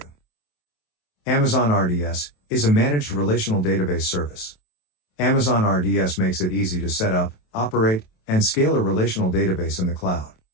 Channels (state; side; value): late; right; 27 ms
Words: Amazon RDS is a managed relational database service. Amazon RDS makes it easy to set up, operate, and scale a relational database in the cloud.